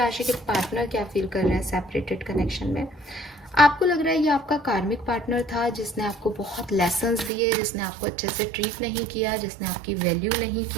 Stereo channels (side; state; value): left; drops out; at 7.3 s